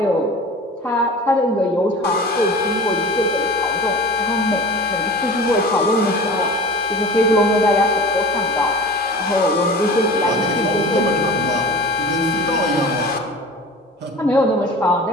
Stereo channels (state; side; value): normal; both; correlation 0.37